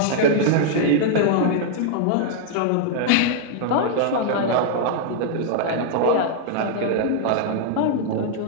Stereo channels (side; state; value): both; different; correlation 0.00